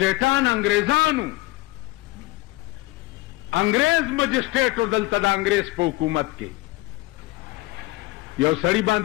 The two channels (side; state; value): right; quieter; 19.7 dB